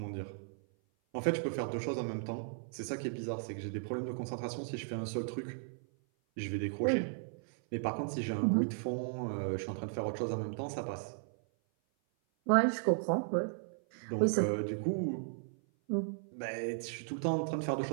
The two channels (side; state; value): left; silent; 54 dB below the other